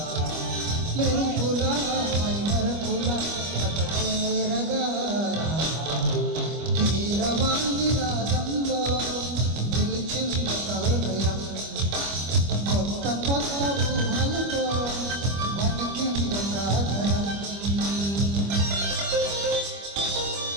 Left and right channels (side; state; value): left; late; 25 ms